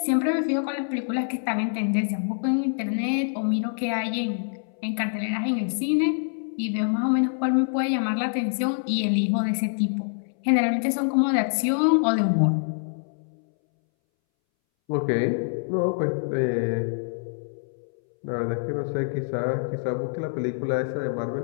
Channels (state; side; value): silent; right; 61 dB below the other